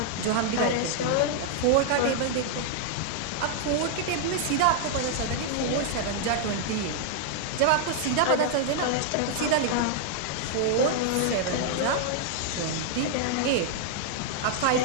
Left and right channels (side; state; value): both; different; correlation -0.01